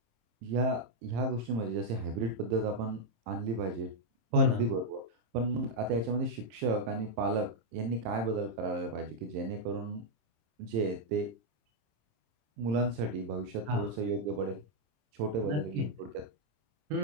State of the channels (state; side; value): late; left; 26 ms